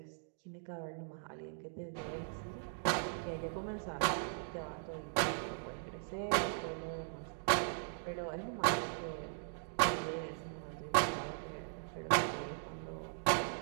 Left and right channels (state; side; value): silent; left; digital silence